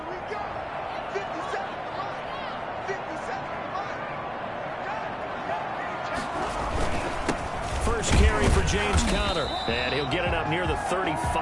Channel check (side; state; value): both; identical; correlation 1.00